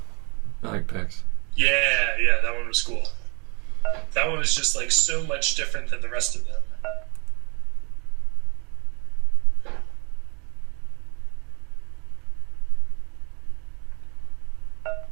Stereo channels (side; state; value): left; quieter; 31.0 dB